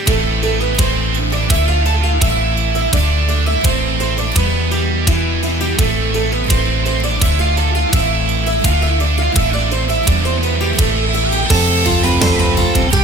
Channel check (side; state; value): both; normal; correlation 0.60